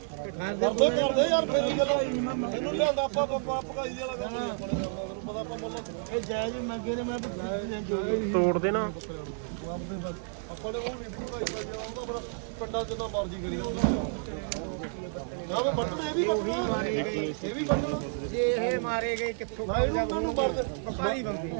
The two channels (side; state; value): left; silent; digital silence